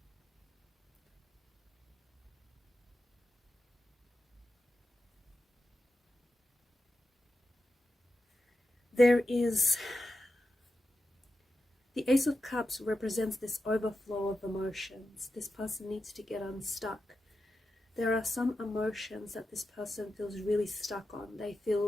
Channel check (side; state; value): both; normal; correlation 0.90